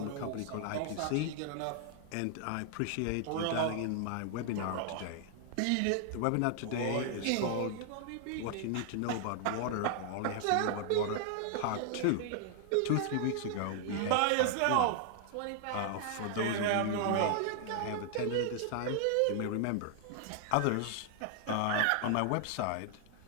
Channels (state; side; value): different; both; correlation 0.00